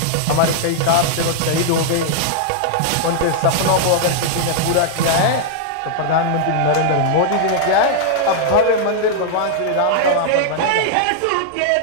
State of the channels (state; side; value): different; both; correlation -0.01